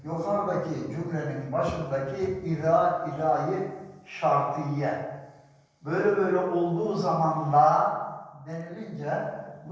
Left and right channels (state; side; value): identical; both; correlation 1.00